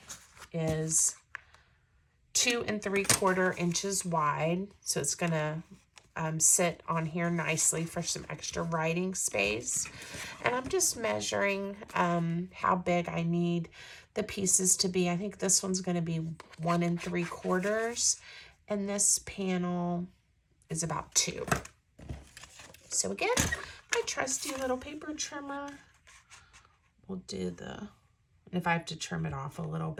is 2 3/4 inches wide, so it's gonna sit on here nicely for some extra writing space. And I'm just measuring how big I need the pieces to be. I think this one's going to be 1 3/4, and this panel is about 2. So again, my trusty little paper trimmer will do the, and if I have to trim it off a little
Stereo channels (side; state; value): both; identical; correlation 1.00